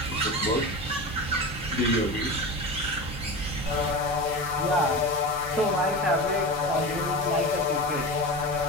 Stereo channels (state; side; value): normal; both; correlation 0.27